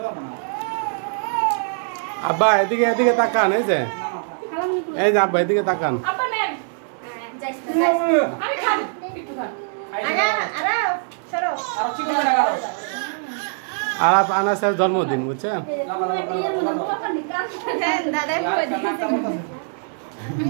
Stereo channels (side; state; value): left; silent; digital silence